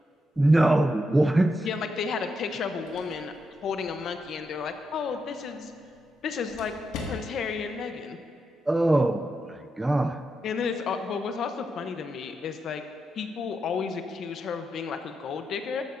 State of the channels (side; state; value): both; normal; correlation 0.84